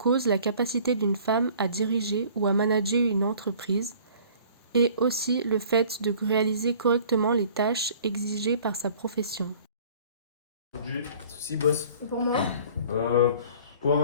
la capacité d'une femme à diriger ou à manager une entreprise, et aussi le fait de réaliser correctement les tâches exigées par sa profession. Aujourd'hui, Souci, boss. Et pour moi?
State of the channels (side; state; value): both; inverted; correlation -0.51